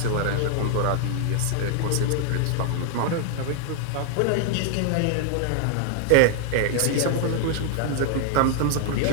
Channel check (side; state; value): both; different; correlation 0.00